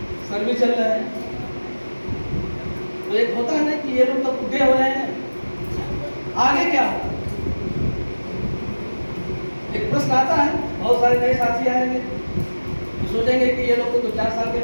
सर्विस चल रहा है। तो एक होता है ना कि ये लोग तो बुढ़े हो रहे हैं, आगे क्या होगा। एक प्रश्न आता है, बहुत सारे नए साथी आएंगे, सोचेंगे कि ये लोग तो 2-4 साल के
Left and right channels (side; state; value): both; inverted; correlation -1.00